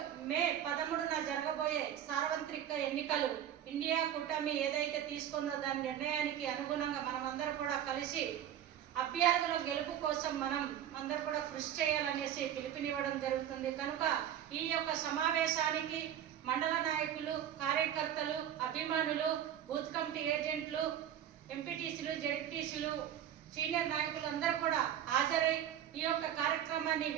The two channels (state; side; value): quieter; left; 10.4 dB